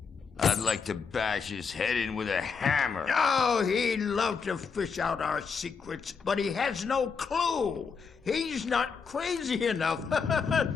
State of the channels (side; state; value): right; quieter; 5.7 dB